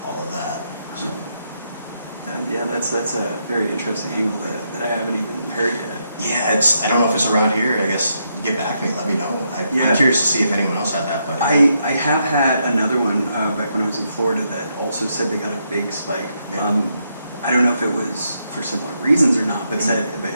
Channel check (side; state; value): both; inverted; correlation -0.79